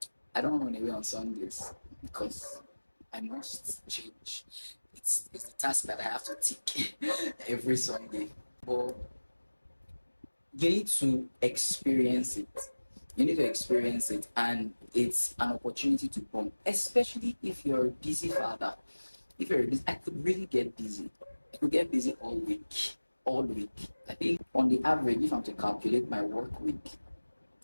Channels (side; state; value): both; inverted; correlation -1.00